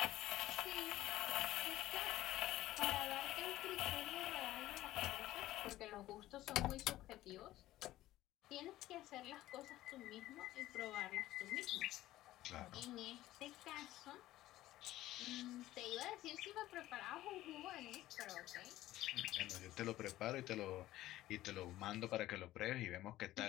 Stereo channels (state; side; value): quieter; right; 15.3 dB